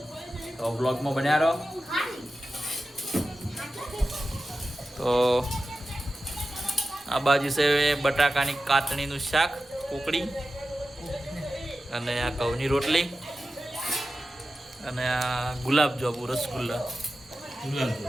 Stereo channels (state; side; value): normal; both; correlation 0.93